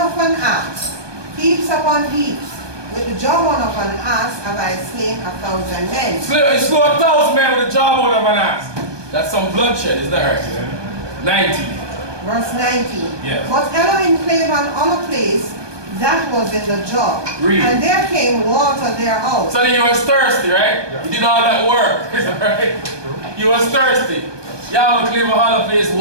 an ass, heaps upon heaps, with the jawbone of an ass have I slain 1,000 men. He slew 1,000 men with a jawbone of an ass. That's some bloodshed, is that right? 19. Verse 19. Yeah. But Elohim clave on a place that was in the jaw. Read. And there came water thereout. So then he was thirsty, right? Yeah. He did all that work, is that right? He was thirsty. Yahweh clave a hollow place,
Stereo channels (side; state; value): left; late; 1.2 ms